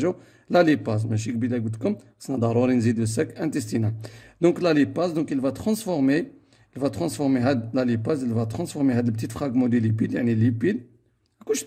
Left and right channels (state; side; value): identical; both; correlation 1.00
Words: لا ليباز، ماشي قبيله قلت لكم خصنا ضروري نزيدو الساك انتستينال. دونك لا ليباز دونك il va transformer la lipase, il va transformer هاد البتيت فراغمون دي ليبيد، يعني ليبيد كون